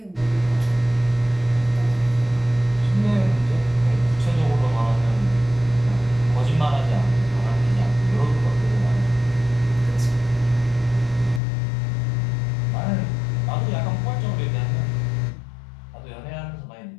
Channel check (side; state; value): right; drops out; at 11.4 s